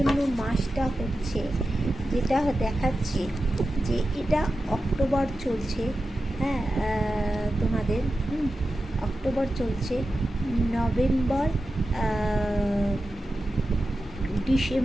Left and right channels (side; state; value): both; normal; correlation 0.92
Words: মাসটা হচ্ছে, যেটা দেখাচ্ছে যে এটা অক্টোবর চলছে, হ্যাঁ তোমাদের অক্টোবর চলছে, নভেম্বর,